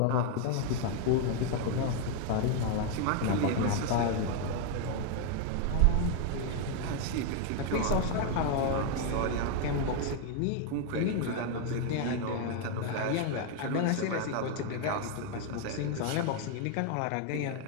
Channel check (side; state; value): both; different; correlation 0.01